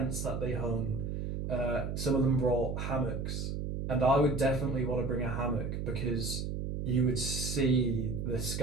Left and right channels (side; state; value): right; noise; hum, 3 dB below the sound